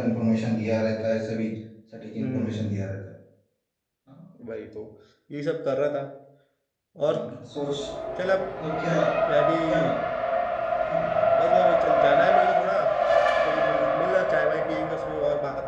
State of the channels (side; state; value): both; identical; correlation 1.00